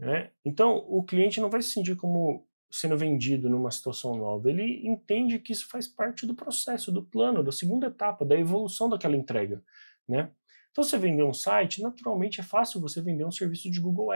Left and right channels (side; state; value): both; inverted; correlation -1.00